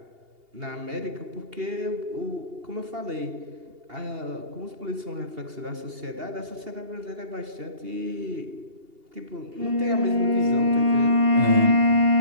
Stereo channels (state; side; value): late; left; 2.8 ms